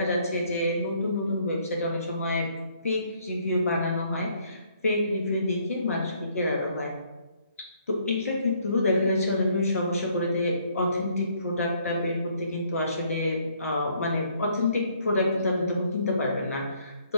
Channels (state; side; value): inverted; both; correlation -0.66